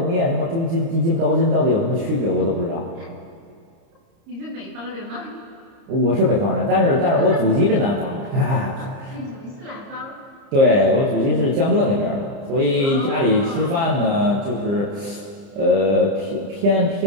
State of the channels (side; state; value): left; late; 30 ms